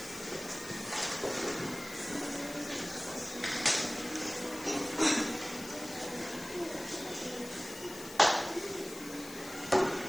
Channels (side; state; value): left; noise; hiss, 14 dB below the sound